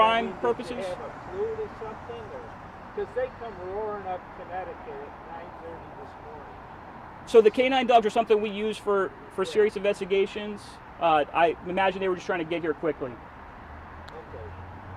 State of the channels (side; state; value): both; identical; correlation 1.00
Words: purposes. Did they have a flute or something? Because they come roaring up Connecticut at 9:30 this morning. So the canine dogs are something we use for serious investigations. I imagine they were just trying to get here quickly. Okay.